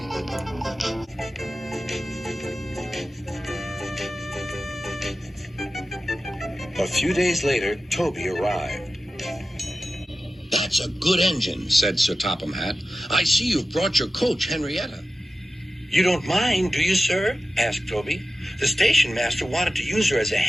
A few days later, Toby arrived. That's a good engine, said Sir Topham Hatt. I see you've brought your coach, Henrietta. You don't mind, do you, sir? Asked Toby. The station master wanted to use her as a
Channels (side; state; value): both; normal; correlation 0.94